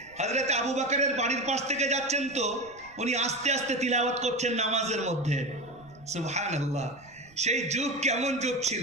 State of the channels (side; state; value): right; noise; rumble, 26 dB below the sound